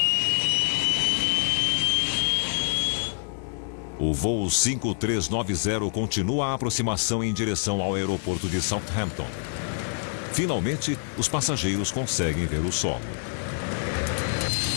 O voo 5390 continua a aproximação em direção ao aeroporto de Southampton. Finalmente, os passageiros conseguem ver o solo.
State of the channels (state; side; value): silent; right; digital silence